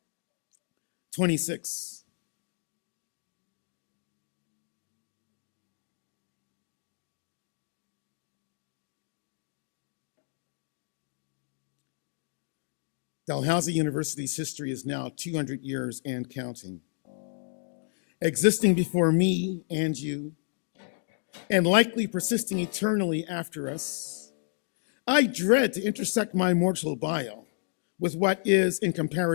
26. Dalhousie University's history is now 200 years and counting. Existing before me and you, and likely persisting eternally after us, I dread to intersect my mortal bio with what is, in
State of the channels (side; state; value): right; silent; digital silence